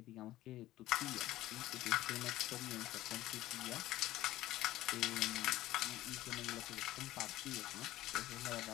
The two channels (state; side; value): quieter; right; 15.6 dB